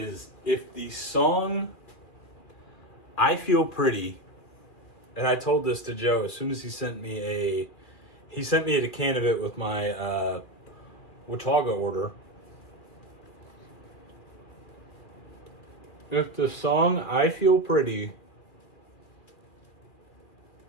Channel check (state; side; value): late; right; 2.4 ms